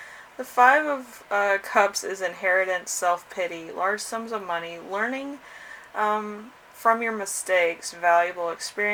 The Five of Cups is inheritance, self-pity, large sums of money, learning from your mistakes, valuable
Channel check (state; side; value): identical; both; correlation 1.00